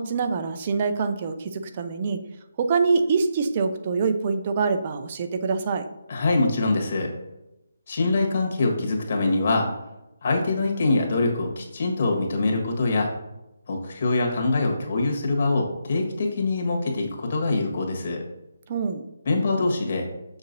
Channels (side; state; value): both; inverted; correlation -0.80